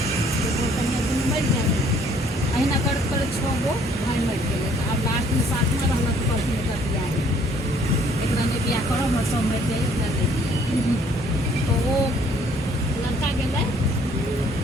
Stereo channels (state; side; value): normal; both; correlation 0.61